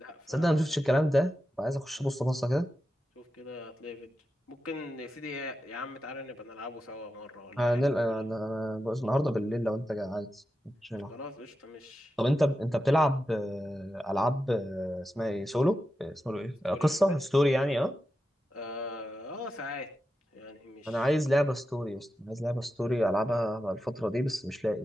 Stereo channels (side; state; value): both; normal; correlation 0.90